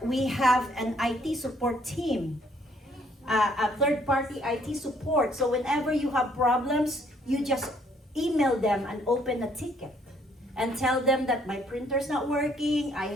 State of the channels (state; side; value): normal; both; correlation 0.65